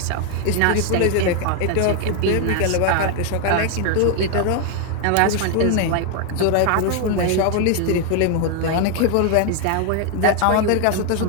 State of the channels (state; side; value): different; both; correlation 0.01